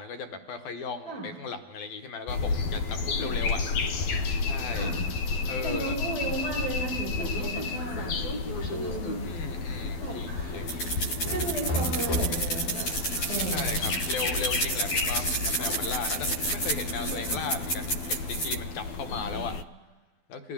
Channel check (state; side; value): late; right; 12 ms